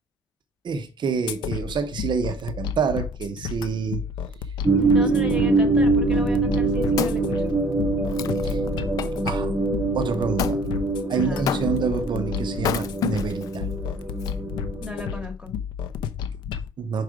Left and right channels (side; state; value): both; normal; correlation 0.51